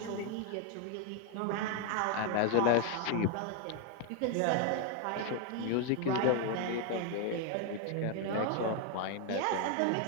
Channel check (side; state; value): both; different; correlation 0.01